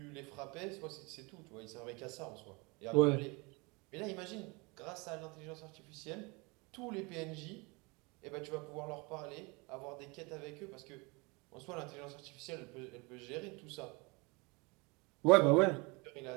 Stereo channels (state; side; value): quieter; left; 28.0 dB